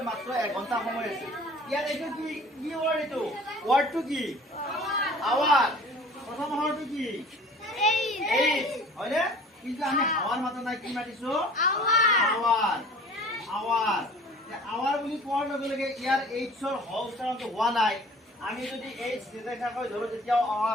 মাত্ৰ 1 ঘণ্টা সময় আছে। ইয়াত এইটো কি কি ওয়াৰ্ড এইটো? ওয়াৰ্ডটো কি? আৱাৰ। প্ৰথম আখৰটো কি? এইচ। হয়নে? কিন্তু আমি আৱাৰ মাতা নাই কি মাতিছো? আৱাৰ। আৱাৰ। আৱাৰ বুলি কোৱাৰ লগে লগে ইয়াৰ এইচৰ হ উচ্চাৰণটো হোৱা নাই। আমি যদি এইচ নিৰ্দেশাকৈ ধৰো তেতিয়াও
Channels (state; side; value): normal; both; correlation 0.47